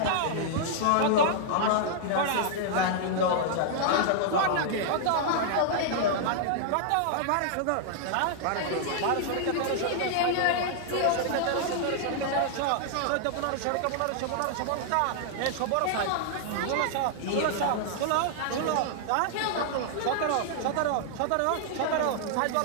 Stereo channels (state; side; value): different; both; correlation -0.01